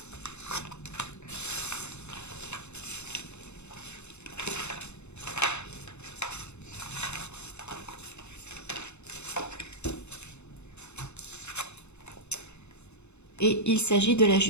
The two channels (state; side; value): late; right; 0.82 ms